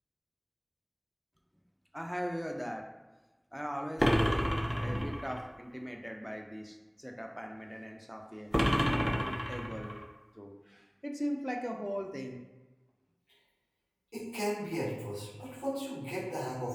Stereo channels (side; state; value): both; identical; correlation 1.00